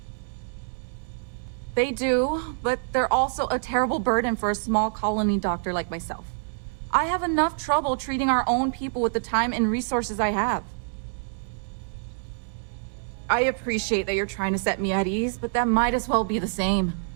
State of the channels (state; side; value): silent; left; 61 dB below the other